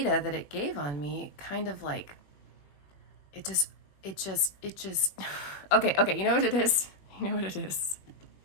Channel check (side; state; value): right; late; 21 ms